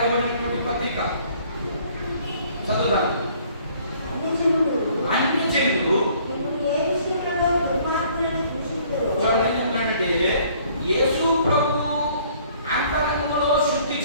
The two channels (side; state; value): both; inverted; correlation -0.59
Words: పత్రిక చదువుదాం అన్ని జనులు చూడండి యేసు ప్రభు అంతరంగంలో శుద్ధి